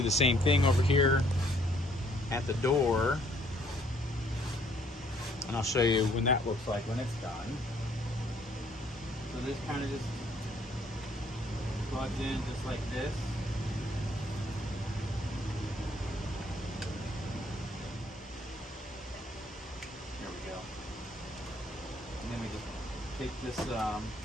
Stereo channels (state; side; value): normal; both; correlation 0.64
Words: the same thing over here at the door. And I'll show you when that looks like when it's done. So this kind of just plugs in just like this. There we go. And then we just take this